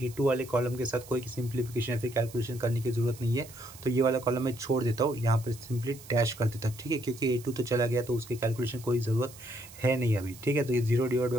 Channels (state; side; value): noise; right; hiss, 19 dB below the sound